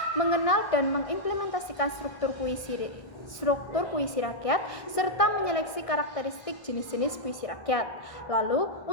mengenal dan mengimplementasikan struktur puisi rakyat, serta menyeleksi karakteristik jenis-jenis puisi rakyat. Lalu,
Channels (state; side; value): late; right; 1.7 ms